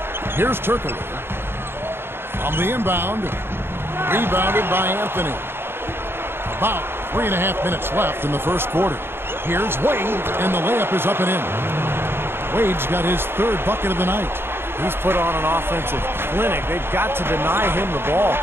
Here's Turkoglu. On the inbound. Rebounded by Anthony. About 3.5 minutes left in the first quarter. Here's Wade, and the layup is up and in. Wade's got his third bucket of the night. He's put on an offensive clinic. They've got to deny him the ball.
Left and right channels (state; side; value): late; left; 0.11 ms